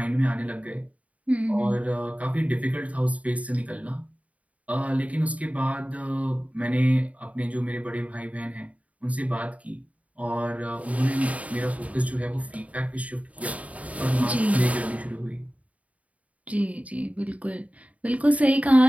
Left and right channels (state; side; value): late; left; 0.068 ms